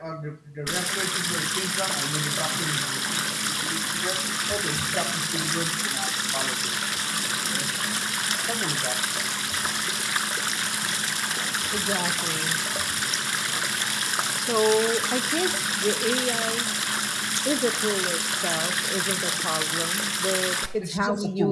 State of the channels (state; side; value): identical; both; correlation 1.00